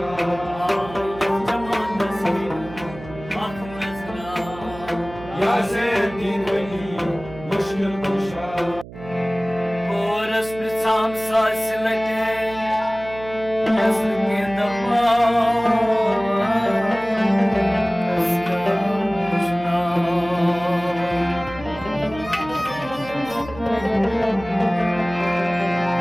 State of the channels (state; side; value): noise; right; hum, 15 dB below the sound